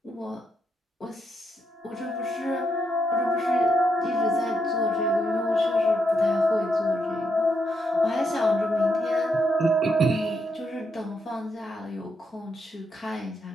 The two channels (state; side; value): normal; both; correlation 0.80